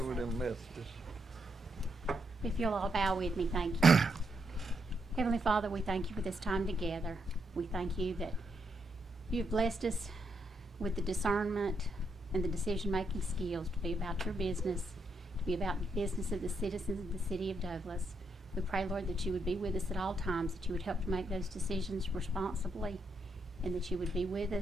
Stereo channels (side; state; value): both; normal; correlation 0.79